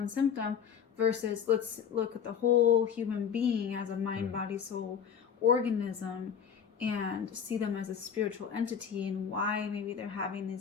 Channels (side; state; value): right; quieter; 7.7 dB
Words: symptom, versus let's look at the whole human being as a mind, body, soul organism, and see them as a spiritual entity, and why maybe they're having